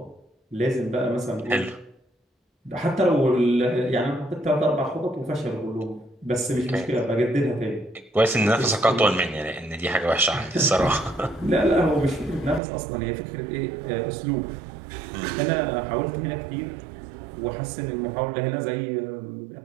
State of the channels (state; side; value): drops out; left; at 12.6 s